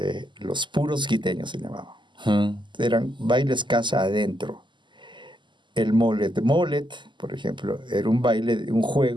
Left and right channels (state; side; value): late; left; 0.23 ms